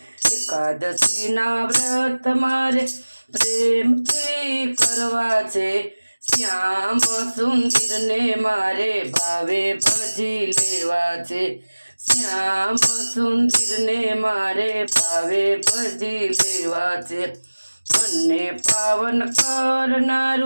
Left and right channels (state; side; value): inverted; both; correlation -1.00